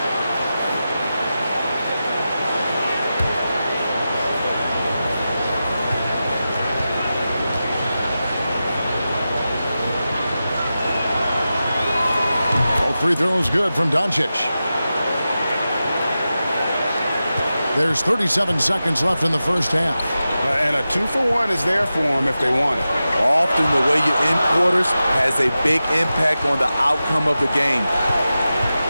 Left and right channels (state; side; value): inverted; both; correlation -0.93